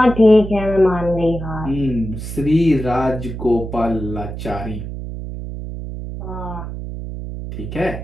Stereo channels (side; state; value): right; noise; hum, 8 dB below the sound